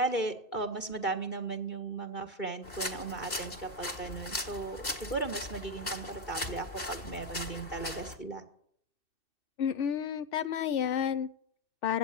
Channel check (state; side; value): late; right; 2.7 ms